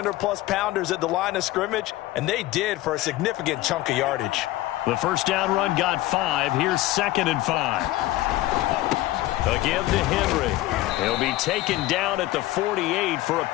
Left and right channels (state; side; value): quieter; right; 16.8 dB